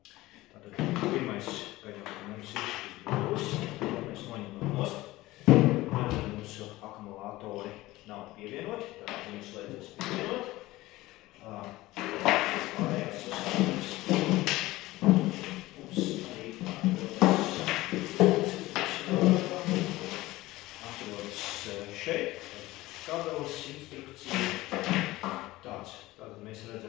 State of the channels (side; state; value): right; quieter; 18.3 dB